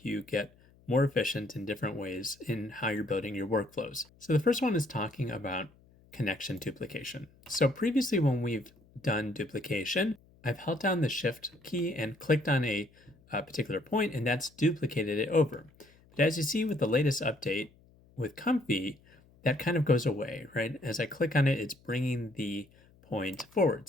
you get more efficient in different ways in how you're building your workflows. So the first one is talking about connection duplication. So previously when we've done duplication, I've held down the Shift key and clicked on a particular point, and that's duplicated it over. But as you see with the latest update with Comfy, that kind of goes away, right? As I click on it, it's bringing the point forward.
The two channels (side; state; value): left; noise; hum, 29 dB below the sound